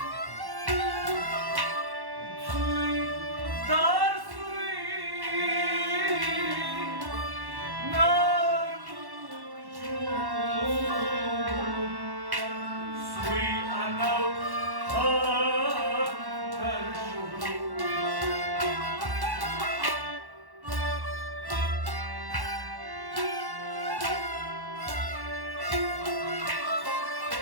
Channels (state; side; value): late; left; 1.1 ms